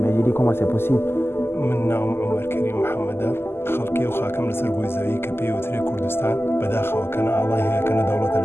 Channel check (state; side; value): late; right; 0.12 ms